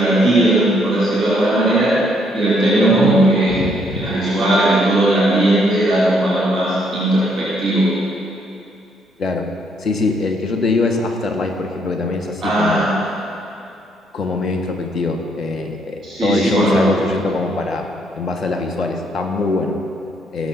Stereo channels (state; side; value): normal; both; correlation 0.70